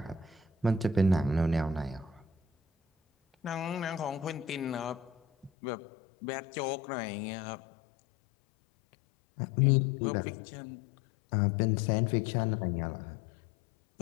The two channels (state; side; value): drops out; right; at 5.5 s